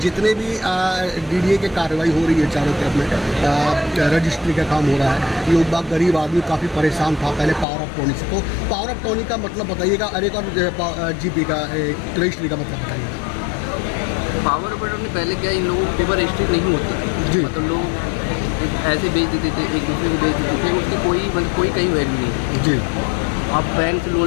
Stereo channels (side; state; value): right; drops out; at 7.7 s